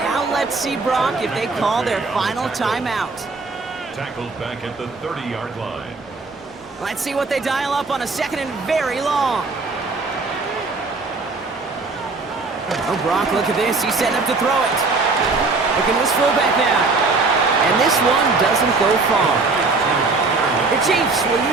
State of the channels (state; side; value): quieter; left; 3.8 dB